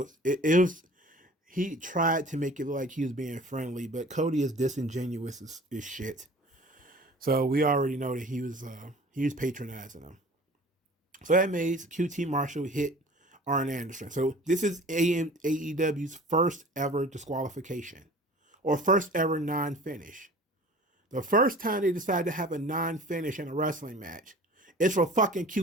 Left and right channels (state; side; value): normal; both; correlation 0.44